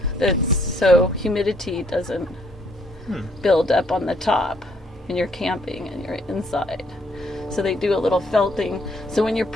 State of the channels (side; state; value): both; normal; correlation 0.67